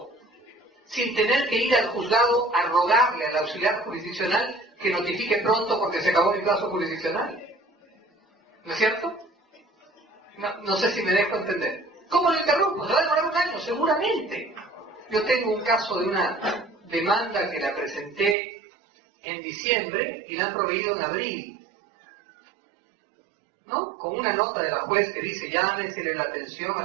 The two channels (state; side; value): drops out; left; at 18.4 s